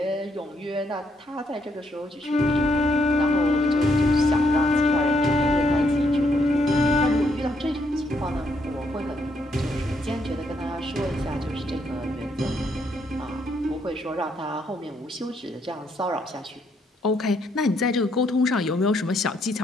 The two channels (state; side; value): normal; both; correlation 0.73